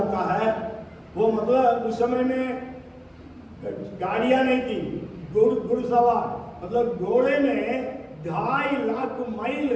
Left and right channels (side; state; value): both; identical; correlation 1.00